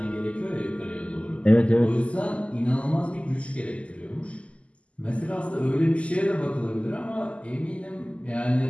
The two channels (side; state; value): right; late; 0.060 ms